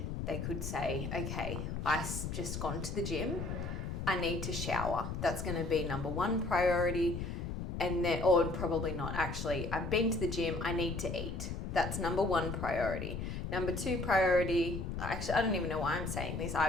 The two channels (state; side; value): noise; left; rumble, 4 dB below the sound